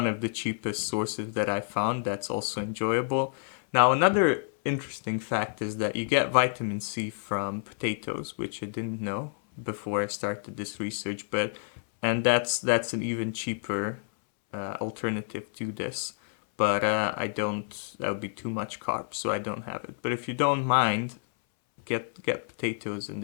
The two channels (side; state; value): right; silent; 59 dB below the other